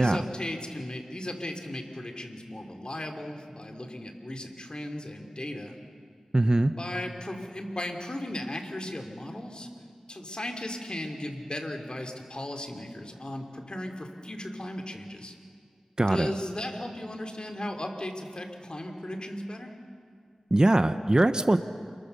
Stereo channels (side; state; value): both; normal; correlation 0.96